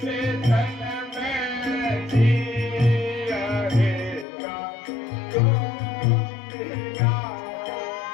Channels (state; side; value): drops out; right; at 4.2 s